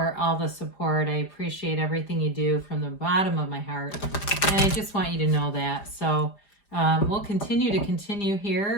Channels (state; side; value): late; right; 5.0 ms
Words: all the support. I appreciate everything you do from the bottom of my heart, and I just want you to know that. So we'll continue